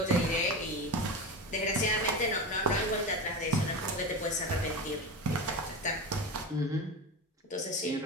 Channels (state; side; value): normal; both; correlation 0.23